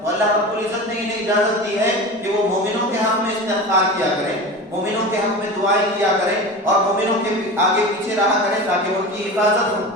تو اللہ رب العزت نے انہیں اجازت دی ہے کہ وہ مومنوں کے حق میں استغفار کیا کریں، مومنوں کے حق میں دعائیں کیا کریں اور مومنوں کے آگے پیچھے رہا کریں تاکہ ان کی حفاظت ہو۔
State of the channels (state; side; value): normal; both; correlation 0.30